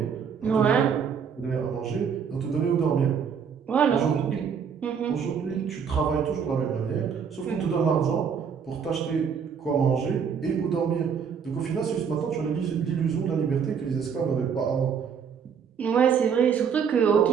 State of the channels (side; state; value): left; quieter; 6.9 dB